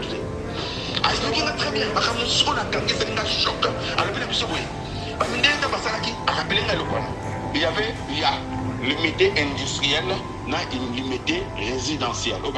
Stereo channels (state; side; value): identical; both; correlation 1.00